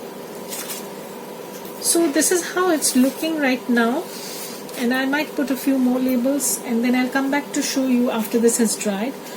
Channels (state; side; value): identical; both; correlation 1.00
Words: So this is how it's looking right now, and I might put a few more labels, and then I'll come back to show you after this has dried